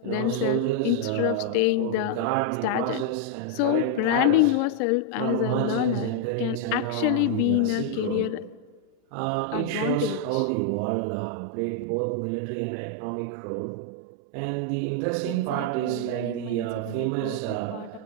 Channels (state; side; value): different; both; correlation 0.00